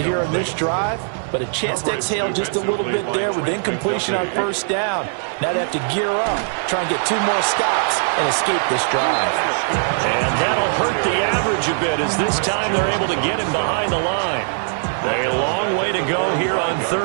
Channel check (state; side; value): silent; left; digital silence